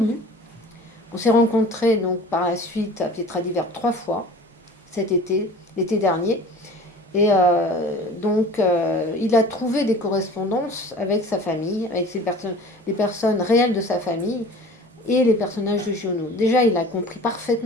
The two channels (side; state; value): both; normal; correlation 0.42